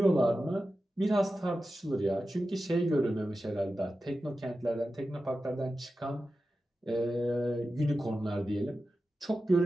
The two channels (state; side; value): normal; both; correlation 0.93